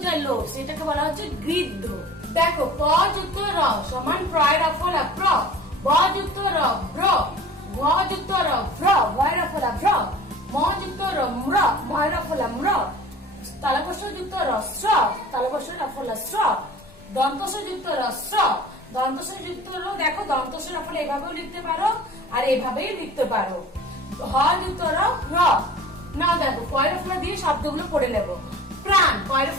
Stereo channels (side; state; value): both; normal; correlation 0.43